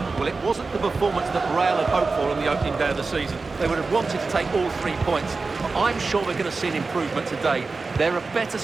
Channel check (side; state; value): left; quieter; 4.0 dB